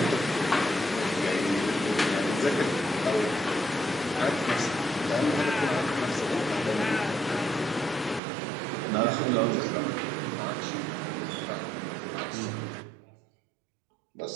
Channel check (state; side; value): drops out; left; at 8.2 s